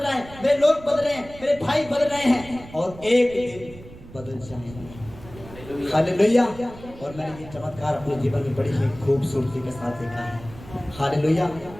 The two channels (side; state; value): right; noise; rumble, 17 dB below the sound